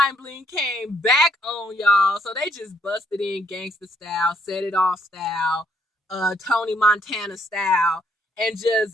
Bling came back on, y'all. So they just busted in gangster style, set it off style, Tony Montana style, and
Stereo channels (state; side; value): normal; both; correlation 0.70